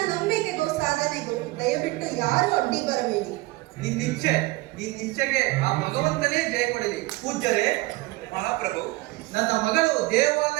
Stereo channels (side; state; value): left; quieter; 21.2 dB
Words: ನಂಬಿಕೆಗೂ ಸಾಧನೆಗೂ ದಯವಿಟ್ಟು ಯಾರು ಅಡ್ಡಿ ಬರಬೇಡಿ. ನಿನ್ನಿಚ್ಛೆಗೆ ಆ ಭಗವಂತನೇ ಜಯ ಕೊಡಲಿ. ಪೂಜ್ಯರೇ, ಮಹಾಪ್ರಭು, ನನ್ನ ಮಗಳು